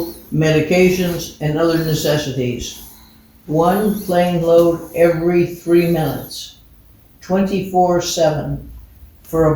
medications, and other necessities. 1 plane load every 3 minutes, 24/7, for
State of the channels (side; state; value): both; identical; correlation 1.00